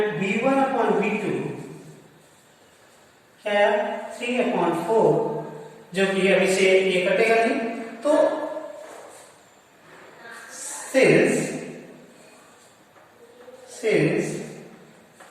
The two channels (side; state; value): both; identical; correlation 1.00